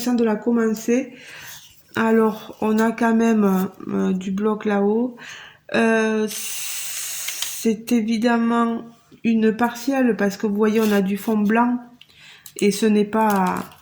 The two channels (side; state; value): both; identical; correlation 1.00